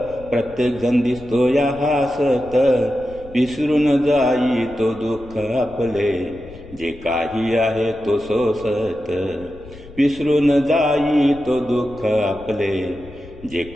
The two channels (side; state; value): left; noise; rumble, 19 dB below the sound